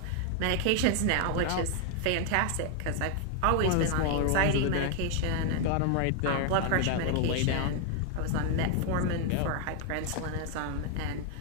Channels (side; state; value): both; different; correlation 0.00